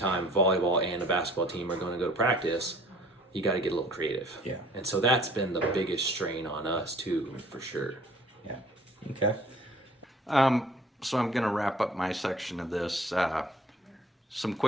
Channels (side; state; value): both; normal; correlation 0.53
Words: volleyball and a basketball team are going to go to practice, you got to get a little creative. Yeah. And so that's been the biggest strain on us too, for sure. Yeah. Okay. So I'm going to wrap up my section of this. Some